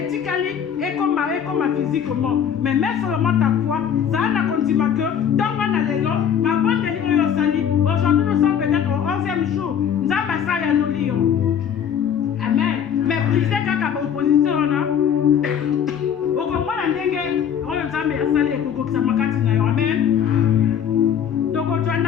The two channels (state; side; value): quieter; right; 8.5 dB